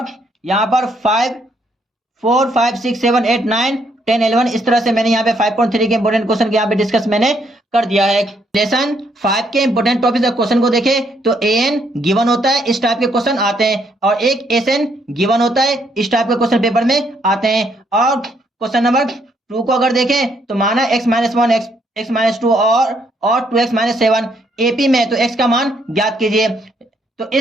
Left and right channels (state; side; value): normal; both; correlation 0.72